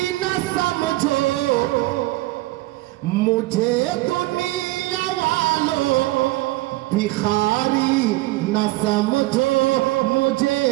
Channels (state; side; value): quieter; left; 19.7 dB